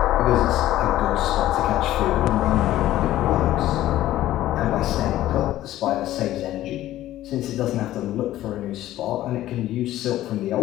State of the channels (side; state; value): right; quieter; 14.3 dB